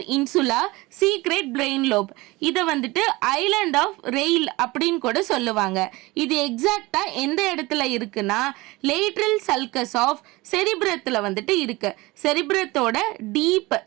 இன்சுலா secret brain lobe. இதை வந்துட்டு ஐலாண்ட் ஆஃப் ரெயில் அப்படின்னு கூட சொல்லுவாங்க. இது எக்ஸாக்டா எந்த இடத்துல இருக்குன்னா லேட்ரல் சல்கஸ் ஆஃப் செரிப்ரத்தில் வந்துட்டு இருக்கு. செரிப்ரத்தோட deep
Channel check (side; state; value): left; quieter; 21.6 dB